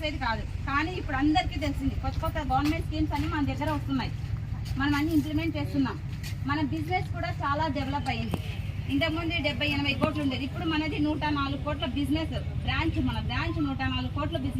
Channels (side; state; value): both; identical; correlation 1.00